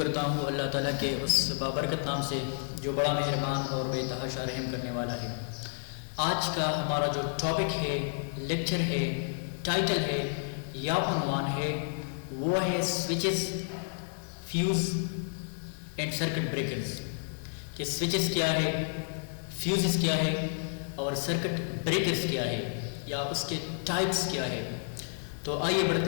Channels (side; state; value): right; silent; 57 dB below the other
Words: ہوں اللہ تعالیٰ کے اس بابرکت نام سے جو بڑا مہربان اور بے تحاشا رحم کرنے والا ہے. آج کا ہمارا جو ٹاپک ہے، لیکچر ہے، ٹائٹل ہے یا عنوان ہے، وہ ہے switches, fuse and circuit breakers. کہ سوئچز کیا ہے، فیوزز کیا ہے اور سرکٹ بریکرز کیا ہے یا اس کے ٹائپس کیا ہے. تو آئیے